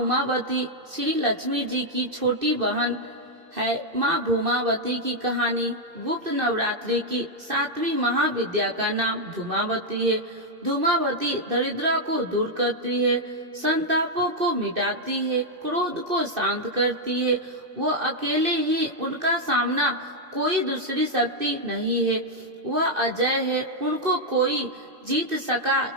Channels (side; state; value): left; late; 2.6 ms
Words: श्री लक्ष्मी जी की छोटी बहन है। माँ भूमावती की कहानी गुप्त नवरात्रि की 7वीं महाविद्या का नाम धूमावती है। धूमावती दरिद्रता को दूर करती है, संतापों को मिटाती है, क्रोध को शांत करती है। वो अकेले ही उनका सामना, कोई दूसरी शक्ति नहीं है। वह अजय है, उनको कोई जीत